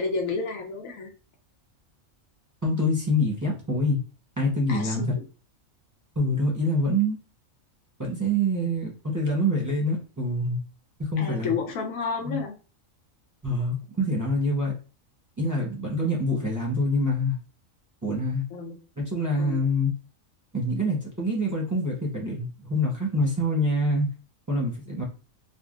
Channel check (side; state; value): both; normal; correlation 0.24